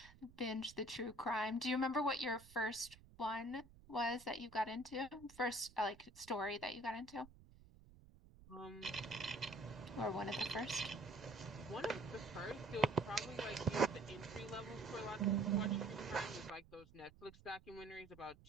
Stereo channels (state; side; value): noise; right; rumble, 21 dB below the sound